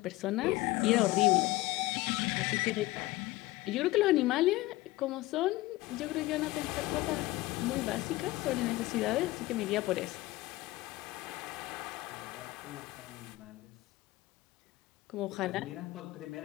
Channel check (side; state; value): right; quieter; 19.0 dB